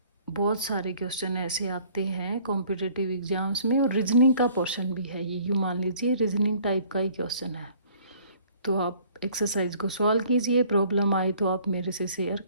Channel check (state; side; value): inverted; both; correlation -0.56